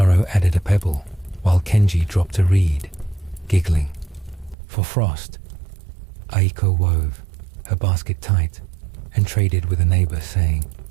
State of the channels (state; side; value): drops out; left; at 4.5 s